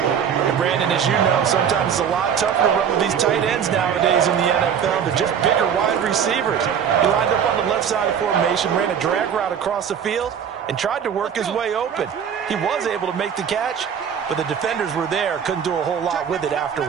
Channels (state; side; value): quieter; left; 8.0 dB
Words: And Brandon, as you know, sometimes it's a lot tougher to run with these tight ends nowadays in the NFL. They're just bigger wide receivers. He lined up on the left side of the formation, ran a drag route across the field, and tried to work his way open. He was able to make the catch, but the defenders were there, couldn't do a whole lot with it